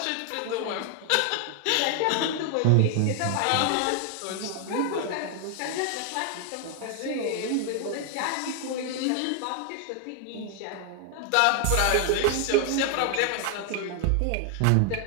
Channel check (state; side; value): different; both; correlation 0.00